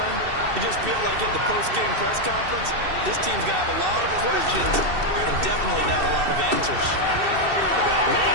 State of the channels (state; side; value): late; left; 2.7 ms